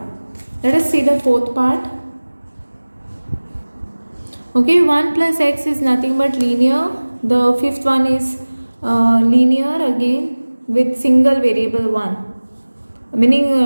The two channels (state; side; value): inverted; both; correlation -1.00